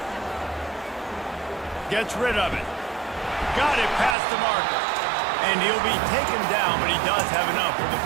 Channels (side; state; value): left; drops out; at 4.2 s